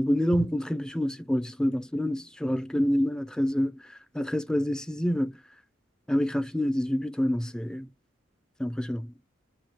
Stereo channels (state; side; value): normal; both; correlation 0.98